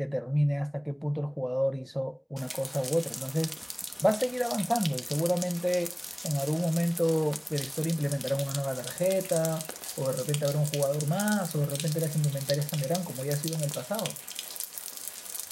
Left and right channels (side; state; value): both; identical; correlation 1.00